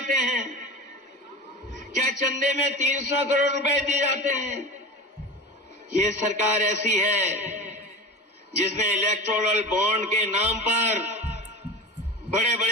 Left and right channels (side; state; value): both; normal; correlation 0.30